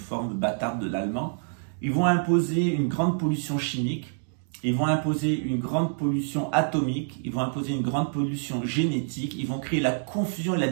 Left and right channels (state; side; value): silent; left; digital silence